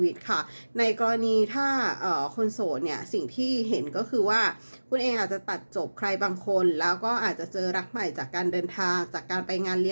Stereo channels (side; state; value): both; inverted; correlation -1.00